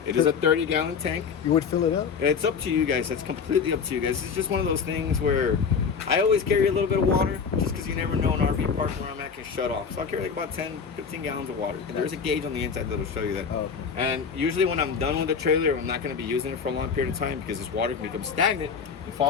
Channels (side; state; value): right; quieter; 6.1 dB